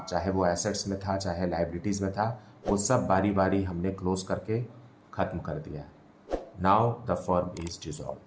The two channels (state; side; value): identical; both; correlation 1.00